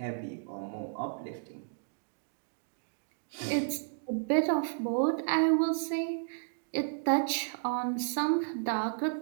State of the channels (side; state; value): left; silent; digital silence